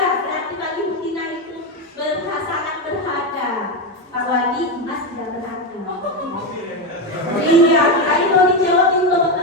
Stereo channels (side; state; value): both; normal; correlation 0.11